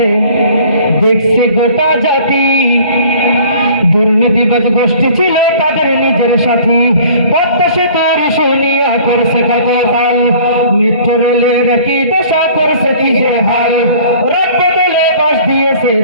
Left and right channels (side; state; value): both; inverted; correlation -0.50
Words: দেখছে গোটা জাতি, দুর্নীতিবাজ গোষ্ঠী ছিল তাদের নিজের সাথী। পদ্মা সেতুর শুনিয়া করছে কত তাল, মেট্রো রেলের কি দশা করছে কি যে হাল। রথ বদলে বাস দিয়েছে